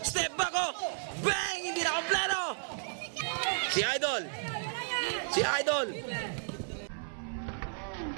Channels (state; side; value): silent; left; 56 dB below the other